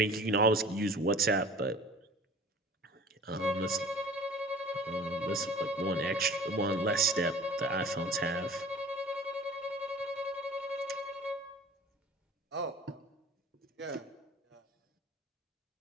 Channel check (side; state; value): both; normal; correlation 0.44